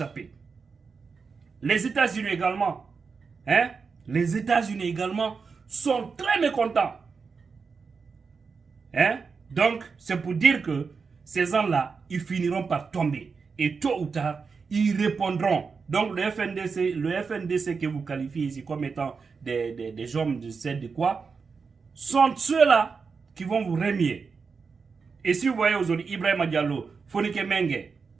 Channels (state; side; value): quieter; left; 5.2 dB